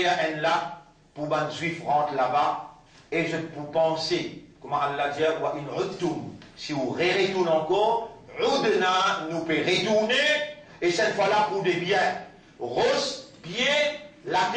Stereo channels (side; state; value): both; identical; correlation 1.00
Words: un lac, pour que les juifs rentrent là-bas, et je peux penser, comment Allah dit, si vous retournez encore, nous pouvons retourner, et cette fois-là pour des biens. Rose, pieds, la